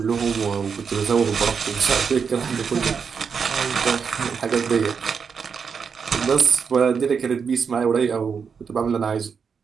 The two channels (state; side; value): quieter; left; 6.2 dB